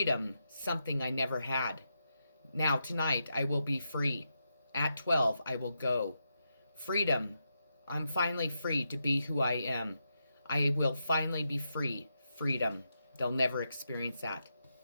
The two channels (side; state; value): both; inverted; correlation -0.85